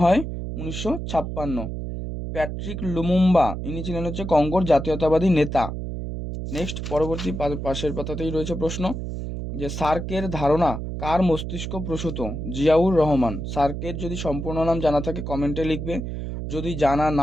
হয় 1956। প্যাট্রিক লুমুম্বা, ইনি ছিলেন হচ্ছে কঙ্গোর জাতীয়তাবাদী নেতা। নেক্সট, পরবর্তী পাশের পাতাতেই রয়েছে প্রশ্ন, যে সার্কের ধারণা কার মস্তিষ্ক প্রসূত? জিয়াউর রহমান। সার্কের যদি সম্পূর্ণ নাম জানা থাকে কমেন্টে লিখবে, যদি জানা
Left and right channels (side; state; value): right; noise; hum, 5 dB below the sound